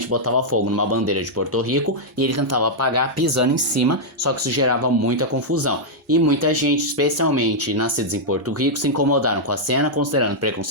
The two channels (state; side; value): normal; both; correlation -0.05